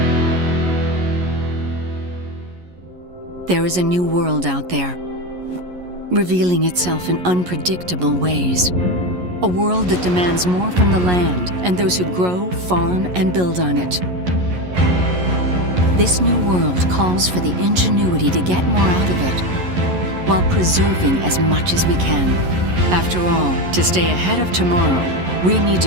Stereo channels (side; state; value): left; late; 11 ms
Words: There is a new world out there, revealing itself in unpredictable ways. A world that demands more from the land and those who grow, farm, and build on it. This new world calls for the ingenuity to get more out of it, while preserving as much as we can. After all, to stay ahead of tomorrow, we need